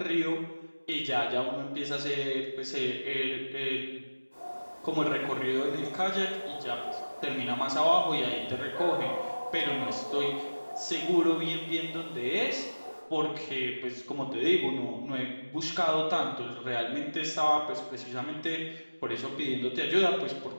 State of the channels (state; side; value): inverted; both; correlation -1.00